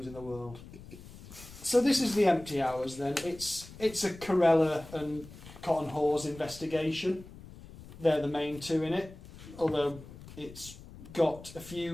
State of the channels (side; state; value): left; noise; rumble, 17 dB below the sound